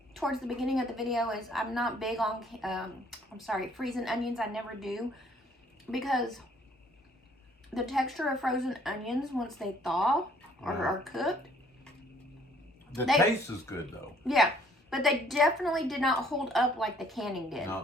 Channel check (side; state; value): both; normal; correlation 0.61